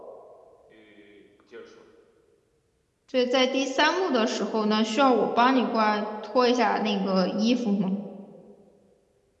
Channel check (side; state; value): both; identical; correlation 1.00